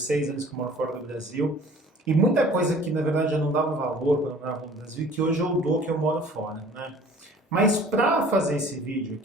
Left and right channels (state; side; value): normal; both; correlation 0.49